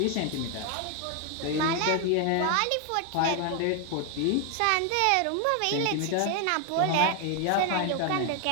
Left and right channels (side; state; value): both; different; correlation 0.01